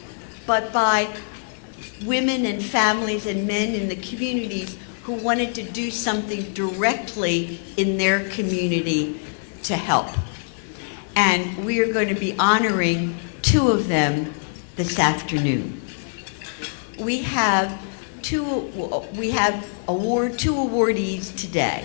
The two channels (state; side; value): silent; right; digital silence